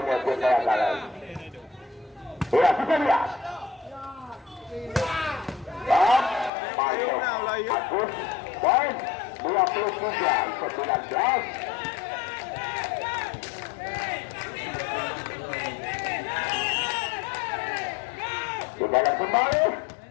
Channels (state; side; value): drops out; right; at 6.5 s